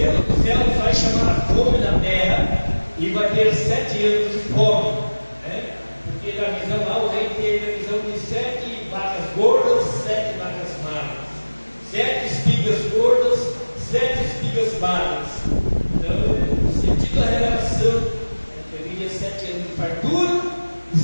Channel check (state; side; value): inverted; both; correlation -1.00